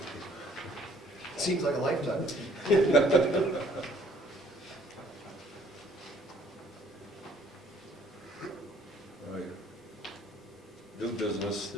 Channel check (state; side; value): normal; both; correlation 0.60